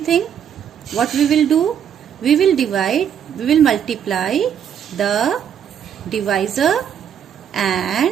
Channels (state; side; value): quieter; left; 8.7 dB